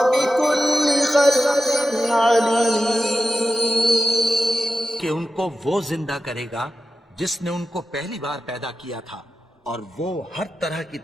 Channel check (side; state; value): both; normal; correlation 0.92